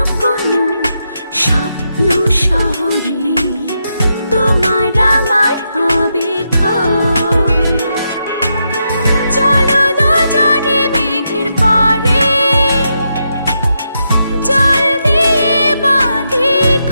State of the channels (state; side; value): inverted; both; correlation -0.83